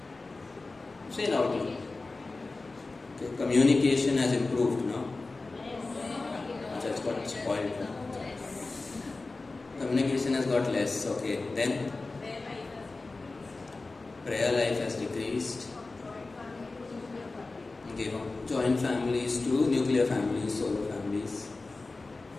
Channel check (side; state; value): right; quieter; 3.5 dB